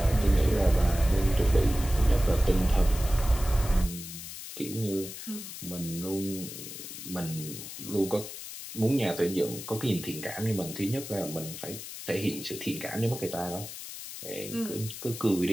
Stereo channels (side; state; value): left; noise; hiss, 10 dB below the sound